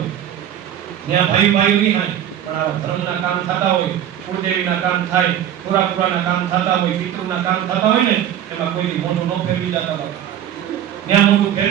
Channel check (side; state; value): left; quieter; 10.5 dB